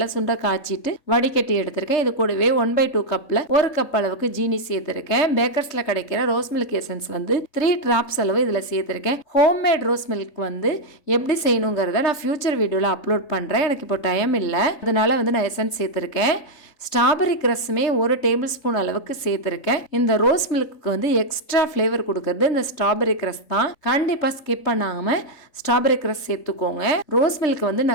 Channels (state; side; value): late; right; 3.3 ms